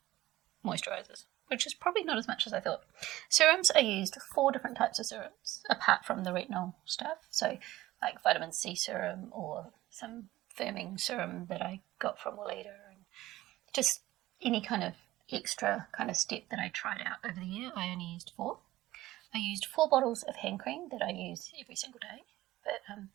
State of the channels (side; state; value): left; quieter; 16.5 dB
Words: moisturisers, which is probably not as much as I thought. Serums, I used 4 different types of serums, apart from the retinol stuff. So like vitamin C serum or some firming serum that I got from Weleda, and just any kind of extra kind of step that I tried out over the year. I only used 4. I used 4 bottles of hand cream that I use every single day, but